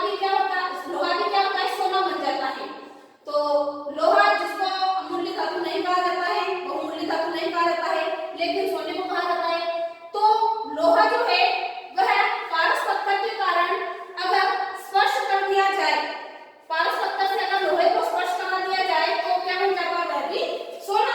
भी क्या होता है, लोहा भी क्या होता है, सोना बन जाता है। तो लोहा जिसको अमूल्य धातु नहीं कहा जाता है, बहुमूल्य धातु नहीं कहा जाता है, लेकिन सोने को कहा जाता है। तो लोहा जो है वह पारस पत्थर के कारण अगर स्पर्श कर दिया जाए, पारस पत्थर से अगर लोहे को स्पर्श करा दिया जाए तो क्या बन जाता है, वह भी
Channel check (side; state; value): both; identical; correlation 1.00